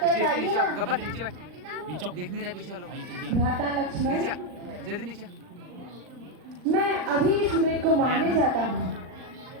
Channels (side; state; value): left; late; 39 ms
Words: लाइए ना। देख नहीं रहा पीछे लो भाई भ्राता लक्ष्मण, जल्दी नीचे। मैं अभी इस मृग को मारने जाता हूँ।